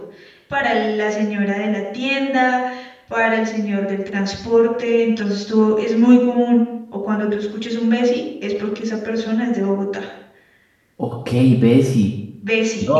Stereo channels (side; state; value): both; identical; correlation 1.00